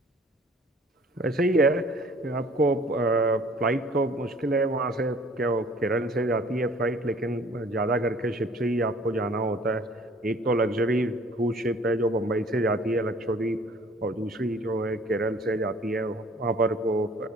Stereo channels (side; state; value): both; normal; correlation 0.53